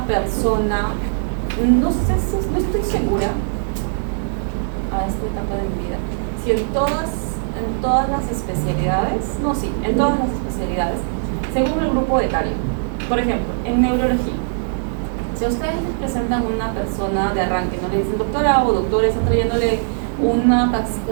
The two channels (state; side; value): silent; left; digital silence